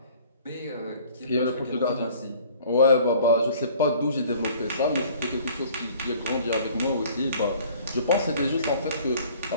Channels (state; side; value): inverted; both; correlation -0.52